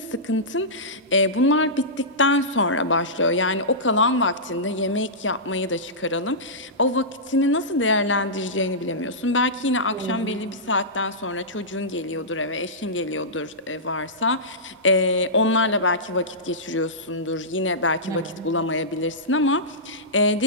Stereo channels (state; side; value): normal; both; correlation -0.16